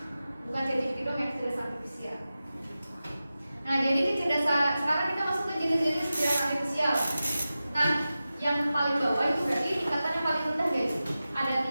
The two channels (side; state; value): both; inverted; correlation -0.94